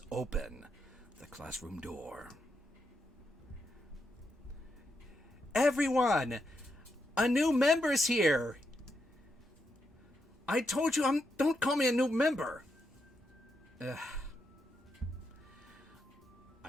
open the classroom door. Everyone, a new member's here. I told you, don't call me a new member. Ugh.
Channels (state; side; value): normal; both; correlation 0.83